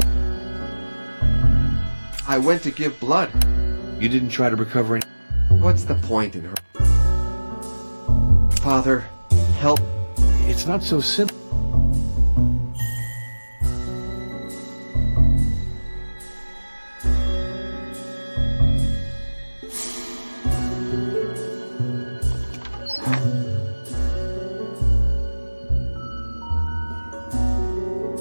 I went to give blood. You didn't try to recover any... What's the point in her? Father, help. It's not so simple.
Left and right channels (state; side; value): inverted; both; correlation -1.00